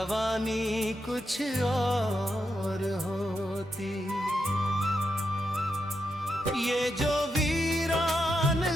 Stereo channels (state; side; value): normal; both; correlation 0.84